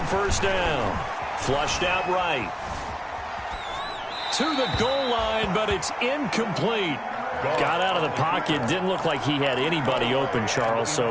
first down. Flushed out right. To the goal line, but it's incomplete. Got out of the pocket. Didn't look like he had anybody open, Charles,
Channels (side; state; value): both; identical; correlation 1.00